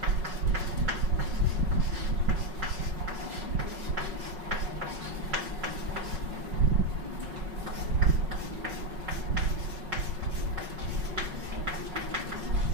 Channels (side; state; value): left; late; 5.4 ms